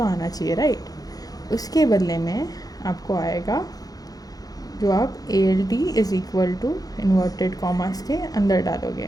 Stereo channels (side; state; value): right; late; 0.18 ms